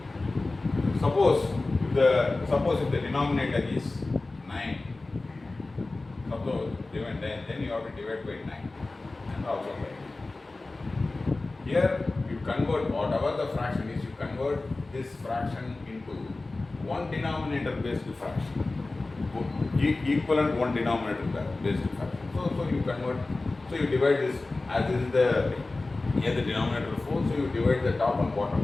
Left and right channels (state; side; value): quieter; right; 3.2 dB